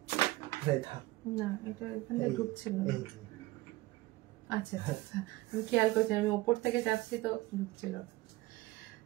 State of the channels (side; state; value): left; quieter; 18.9 dB